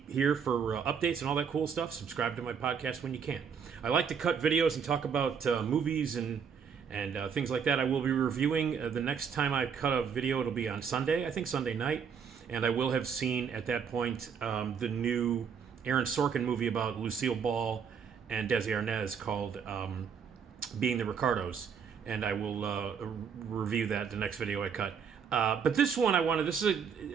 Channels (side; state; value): left; quieter; 6.9 dB